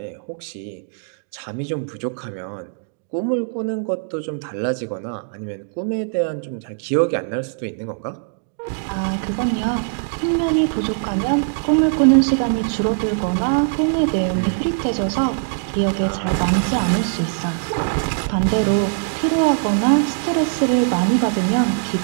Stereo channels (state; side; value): silent; left; digital silence